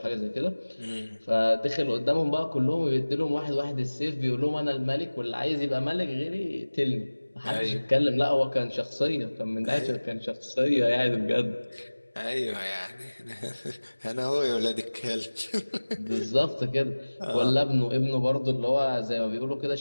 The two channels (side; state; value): both; inverted; correlation -1.00